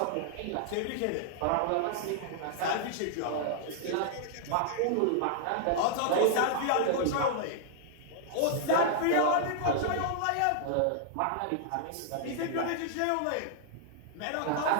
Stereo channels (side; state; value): both; different; correlation -0.01